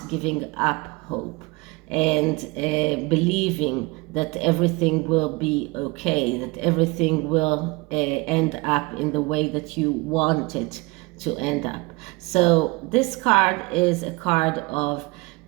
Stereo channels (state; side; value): quieter; left; 25.0 dB